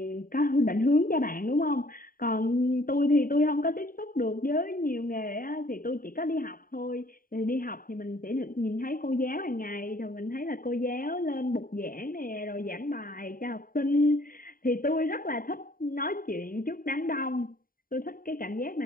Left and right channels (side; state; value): right; late; 0.41 ms